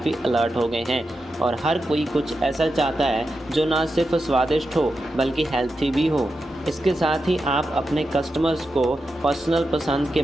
अलर्ट हो गए हैं और हर कोई कुछ ऐसा चाहता है जो ना सिर्फ स्वादिष्ट हो बल्कि हेल्थी भी हो। इसके साथ ही आप अपने कस्टमर्स को पर्सनल पसंद के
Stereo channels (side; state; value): both; normal; correlation 0.89